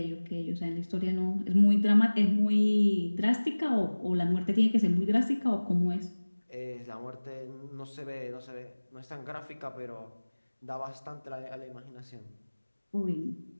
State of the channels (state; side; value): inverted; both; correlation -1.00